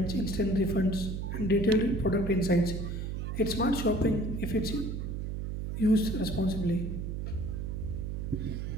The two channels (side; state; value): right; noise; hum, 4 dB below the sound